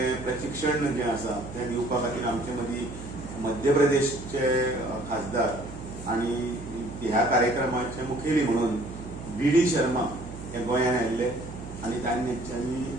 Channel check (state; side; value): noise; right; hum, 12 dB below the sound